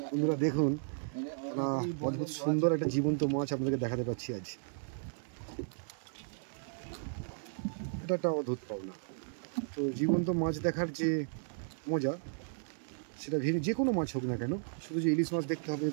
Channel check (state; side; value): silent; left; digital silence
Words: বন্ধুরা দেখুন, অদ্ভুত সুন্দর একটা জীবন্ত মাছ আপনাদেরকে দেখাতে পাচ্ছি আজ। এটা একটা অদ্ভুত পাওনা। তো জীবন্ত মাছ দেখার যে মজা, সেটা যে কোনো মাছ হোক না কেন, শুধু যে ইলিশ মাছ দেখতে হবে